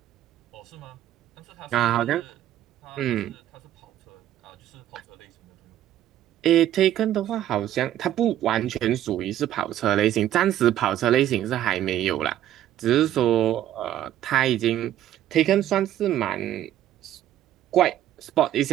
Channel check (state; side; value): quieter; left; 12.2 dB